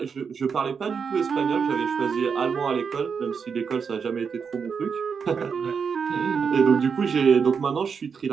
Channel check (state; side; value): quieter; left; 6.1 dB